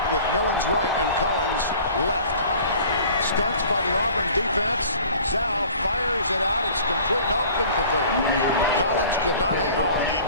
with Millens right and Collins left. Stunts by the Auburn defense. Zhao fires it out. It's complete. Nope, incomplete. Collins could not hang on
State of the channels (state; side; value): inverted; both; correlation -0.47